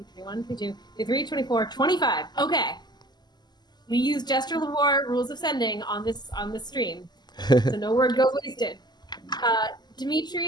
22, 23, 24, 25. Okay. We use gesture of war, rules of sending on this stream, so no word goes wasted.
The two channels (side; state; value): right; late; 0.21 ms